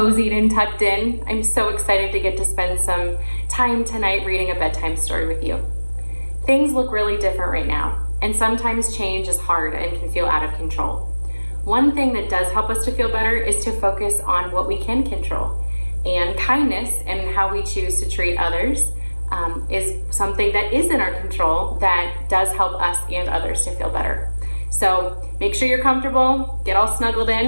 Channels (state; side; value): inverted; both; correlation -1.00